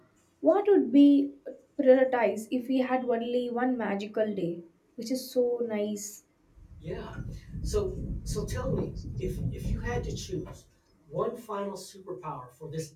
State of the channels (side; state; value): both; identical; correlation 1.00